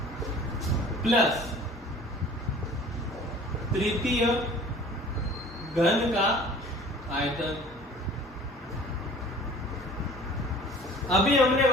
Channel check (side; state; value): both; normal; correlation 0.47